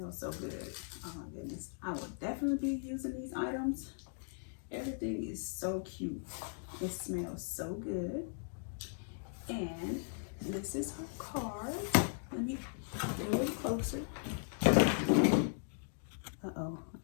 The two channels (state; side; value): silent; right; digital silence